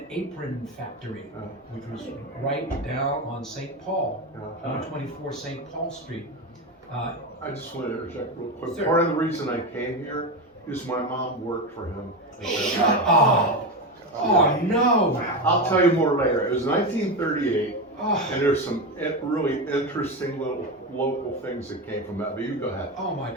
Apron Factory, which was right down on St. Paul, 124 St. Paul Street. I just want to interject real quick. Sir. Part of the reason I came here is my mom worked for him. Shut up! Oh no! I'll tell you more later. It was 1938, Oh, and there's some really interesting little local things that came from that. But you go ahead. oh my!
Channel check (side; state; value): both; normal; correlation 0.17